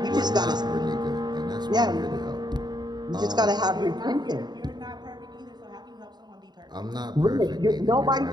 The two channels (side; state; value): left; late; 0.20 ms